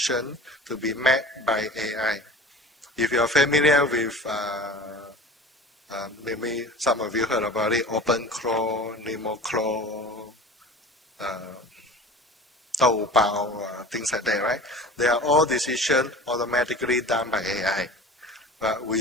to be made by AI. If you are familiar with, maybe some of you heard about it, OpenClaw, NemoClaw, Taobao, things like that, right? They are all decisions automatically done by AI. But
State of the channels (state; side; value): normal; both; correlation 0.38